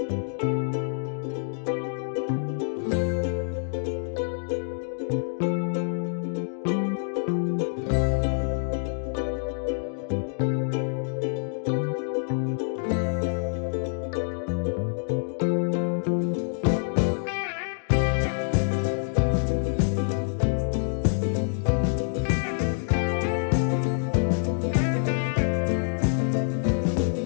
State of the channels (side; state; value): right; silent; digital silence